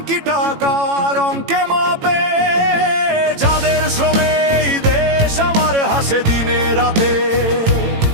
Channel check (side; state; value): left; late; 18 ms